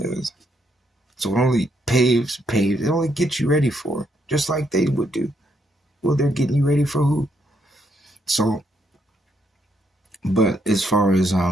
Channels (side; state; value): both; normal; correlation 0.75